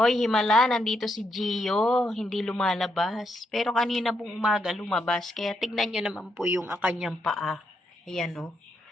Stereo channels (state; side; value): normal; both; correlation 0.79